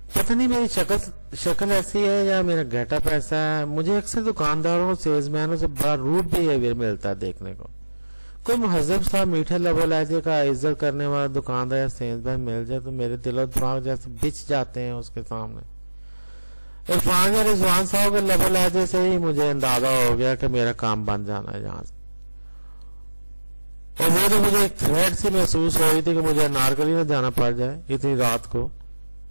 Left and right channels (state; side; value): inverted; both; correlation -1.00